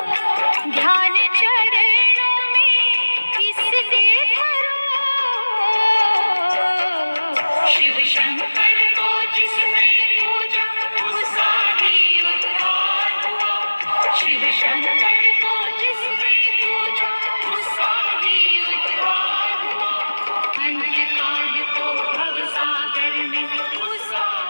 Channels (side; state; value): both; inverted; correlation -1.00